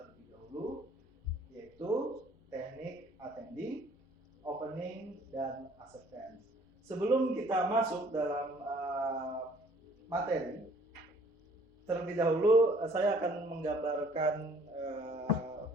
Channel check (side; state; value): both; normal; correlation 0.57